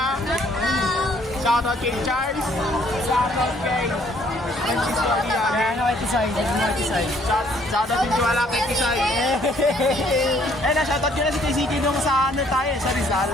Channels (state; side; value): normal; both; correlation 0.63